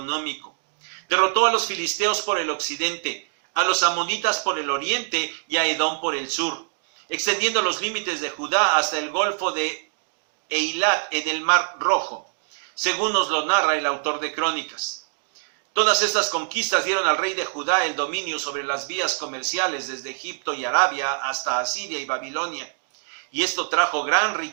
Derrotó a los filisteos por el occidente, a los amonitas por el oriente y a Edom por el sur, extendiendo los límites de Judá hasta el golfo de Eilat en el Mar Rojo, según nos lo narra el autor de Crónicas. Todas estas conquistas dieron al rey de Judá el dominio sobre las vías comerciales desde Egipto y Arabia hasta Asiria y Babilonia. Y esto trajo gran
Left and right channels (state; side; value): silent; left; digital silence